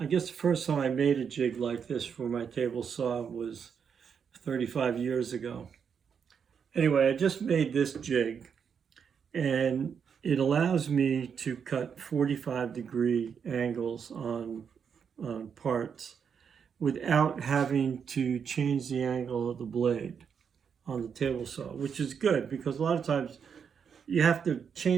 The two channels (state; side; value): quieter; left; 7.0 dB